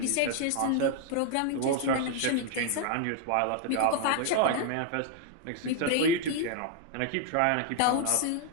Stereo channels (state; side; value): different; both; correlation 0.00